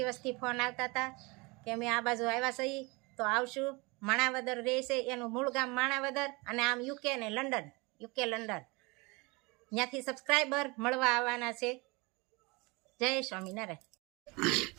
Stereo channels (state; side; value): quieter; left; 26.6 dB